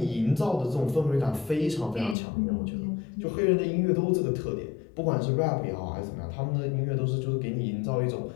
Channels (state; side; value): drops out; right; at 2.1 s